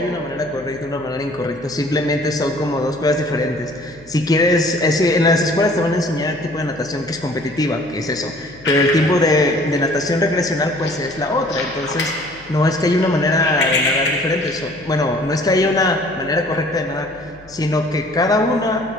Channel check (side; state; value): left; noise; hum, 24 dB below the sound